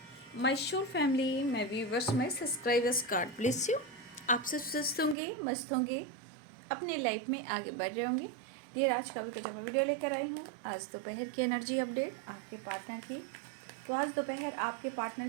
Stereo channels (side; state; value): left; drops out; at 5.2 s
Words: माय शोर फैमिली, मैं व्यूवर्स में सब्सक्राइबर्स कार्ड ब्लेस यू। आप सब स्वस्थ होंगे, मस्त होंगे, अपने लाइफ में आगे बढ़ रहे होंगे। डियर, आज का भी जब मैं वीडियो लेकर आई हूँ, आज दोपहर की एनर्जी अपडेट आपके पार्टनर की। तो आज दोपहर आपके पार्टनर